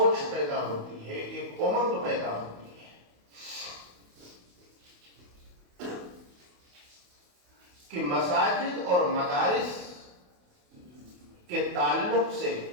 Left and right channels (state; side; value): late; left; 28 ms